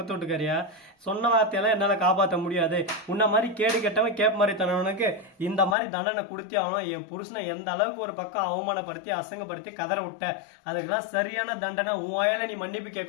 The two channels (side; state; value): right; drops out; at 5.8 s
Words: வீட்டுக்காரியா? சொன்ன வார்த்தையெல்லாம் என்னால காப்பாற்ற முடியாது. உன்ன மாதிரி கேடு கெட்டவன் கேப் மாதிரி தனவனுக்கு இந்த மாதிரி தண்டனை கொடுத்தே ஆகணும். என் புருஷனை எந்த அளவுக்கு ஒரு பக்கம் அவமானப்படுத்தி அசங்கப்படுத்தி கதற விட்ட, அதுக்கெல்லாம் சரியான தண்டனை உன் வாயில நீ மன்னிப்பு